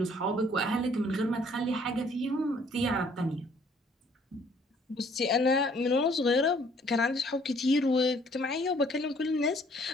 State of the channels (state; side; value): normal; both; correlation 0.60